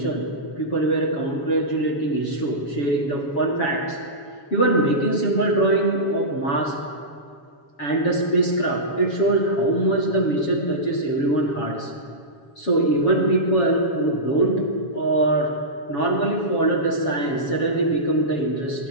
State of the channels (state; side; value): late; right; 7.1 ms